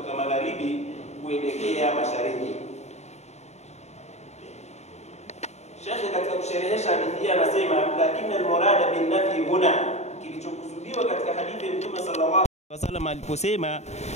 magharibi kuelekea mashariki. Sheikh katika kusherehesha hadithi anasema, lakini al-murada bin nafi huna, kilichokusudiwa katika hadithi ya Mtume sallallahu alaihi wasallam aliposema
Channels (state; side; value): late; right; 0.32 ms